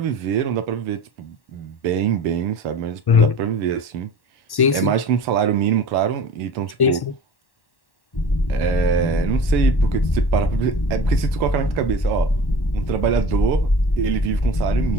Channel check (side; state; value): right; late; 1.1 ms